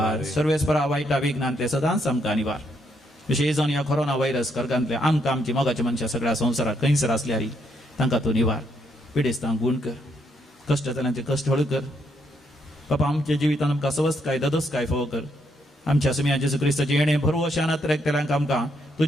सर्वेस्परा वायटा विघ्नांतले सदांच आमकां निवार. विशेश जावन ह्या कोरोना व्हायरस कर्गांतले आमकां आमची मोगाच्या मनशां सगळ्या संवसाराक खंयसर आसल्यार तांकां तूं निवार. पिडेस्तांक गूण कर, कश्ट जाल्यांचे कश्ट हळ कर. बापा, आमच्या जिवितान आमकां स्वस्थ काय ददस काय फावो कर. आमच्या सुमया जेजू क्रिस्ताची येणे भरवशान तेल्यांक आमकां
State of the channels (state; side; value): normal; both; correlation 0.75